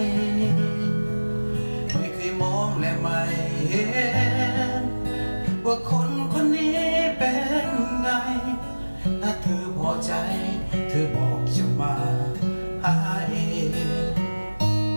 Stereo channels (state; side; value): inverted; both; correlation -1.00